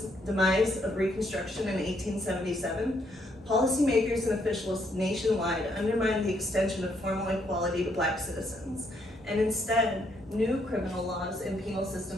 demise of Reconstruction in 1877, policymakers and officials nationwide undermined the extension of formal equality to Black citizens. And instead, new criminal laws and penal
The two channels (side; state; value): both; normal; correlation 0.72